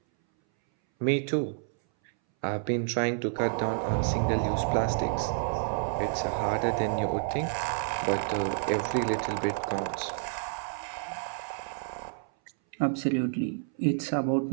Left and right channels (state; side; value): silent; left; 58 dB below the other